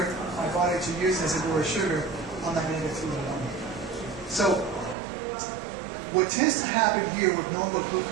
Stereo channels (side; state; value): left; drops out; at 5.0 s